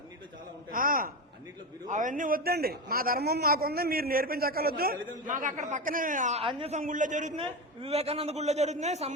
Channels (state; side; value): normal; both; correlation 0.17